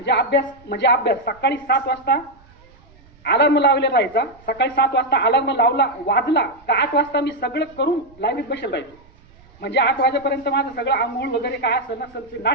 अभ्यास सकाळी 7 वाजता अलार्म लावलेला राहायचा. सकाळी 7 वाजता अलार्म वाजला का 8 वाजता मी सगळं करून लाईनीत बसेल राहायचो. म्हणजे 8 वाजेपर्यंत माझं सगळं आंघोळ वगैरे काय असेल नसेल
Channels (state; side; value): noise; right; rumble, 27 dB below the sound